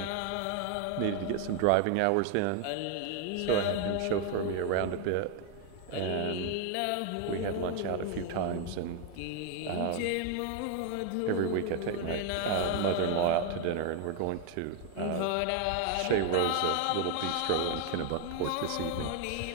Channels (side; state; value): both; different; correlation 0.00